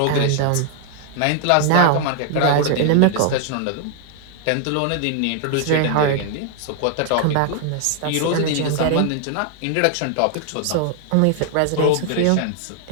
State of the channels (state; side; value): different; both; correlation 0.00